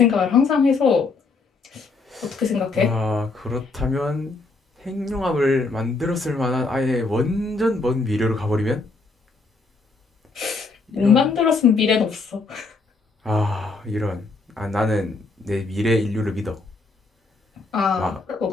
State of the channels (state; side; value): quieter; right; 3.8 dB